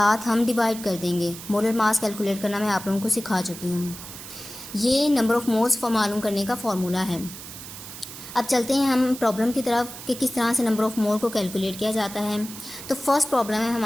हम डिवाइड कर देंगे। मोलर मास कैलकुलेट करना मैं आप लोगों को सिखा चुकी हूँ। ये नंबर ऑफ मोल्स मालूम करने का फॉर्मूला है। अब चलते हैं हम प्रॉब्लम की तरफ कि किस तरह से नंबर ऑफ मोल को कैलकुलेट किया जाता है। तो फर्स्ट प्रॉब्लम है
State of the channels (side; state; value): right; noise; hiss, 13 dB below the sound